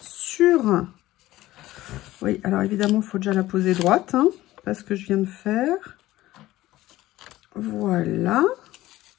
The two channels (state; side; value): quieter; right; 16.3 dB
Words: sur. Oui, alors évidemment, il faut déjà la poser droite, hein, parce que je viens de faire. Voilà.